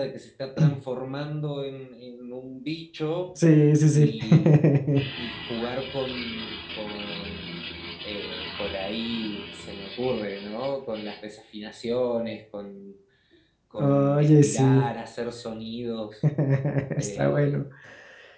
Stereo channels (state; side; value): identical; both; correlation 1.00